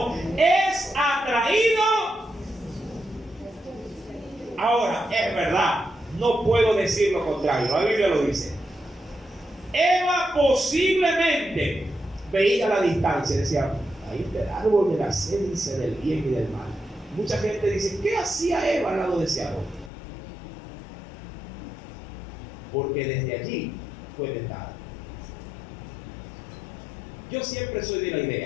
Es atraído. Ahora, es verdad, no puedo decir lo contrario, la Biblia lo dice. Eva posiblemente veía a la distancia y decía, ahí está el árbol de la ciencia del bien y del mal. Mucha gente dice, ¿qué hacía Eva al lado de ese árbol? Porque desde allí fue tentada. Yo siempre soy de la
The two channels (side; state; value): right; drops out; at 19.9 s